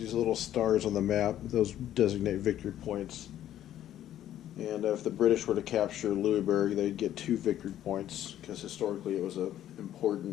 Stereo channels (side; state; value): right; quieter; 11.9 dB